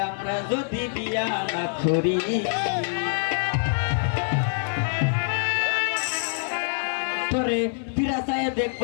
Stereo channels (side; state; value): right; silent; 62 dB below the other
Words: আমরা যদি বিয়া না করি তোরে পিরাসায়